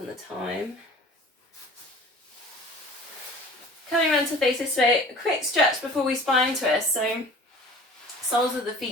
the time. Coming around to face this way, a quick stretch before we spine twist. So soles of the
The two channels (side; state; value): both; normal; correlation 0.44